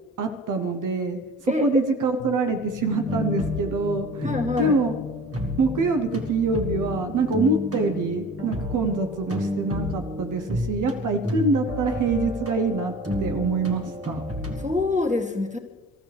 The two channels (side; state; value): both; normal; correlation 0.42